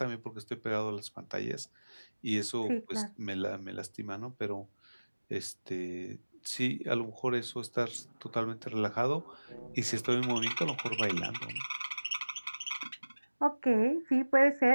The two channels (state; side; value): inverted; both; correlation -1.00